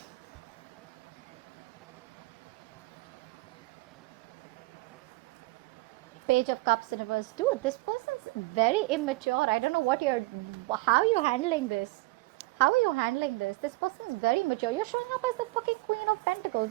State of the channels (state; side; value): quieter; left; 22.1 dB